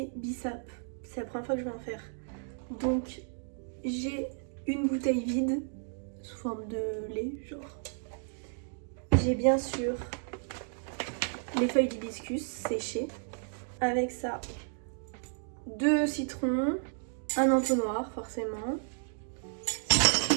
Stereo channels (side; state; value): left; silent; digital silence